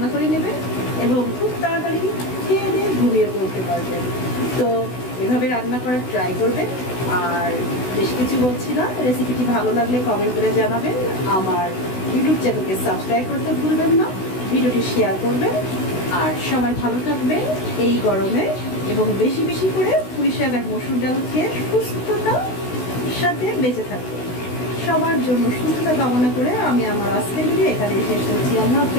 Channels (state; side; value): late; right; 16 ms